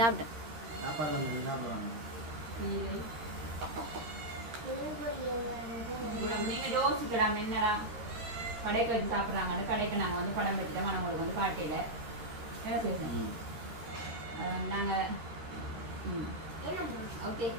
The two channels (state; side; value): late; left; 13 ms